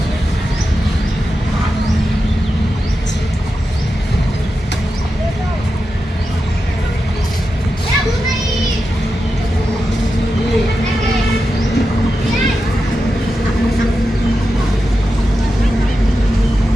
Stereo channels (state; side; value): normal; both; correlation 0.90